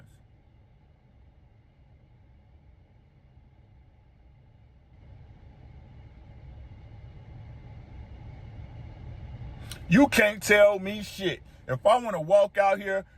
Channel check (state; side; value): identical; both; correlation 1.00